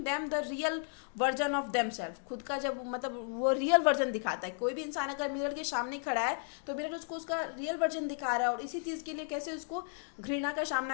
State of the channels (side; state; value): right; silent; 55 dB below the other